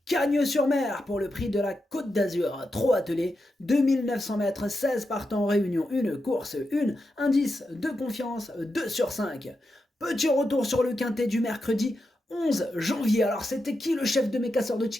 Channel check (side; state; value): both; normal; correlation 0.87